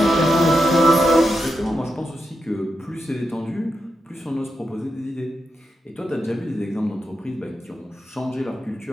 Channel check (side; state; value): both; normal; correlation 0.86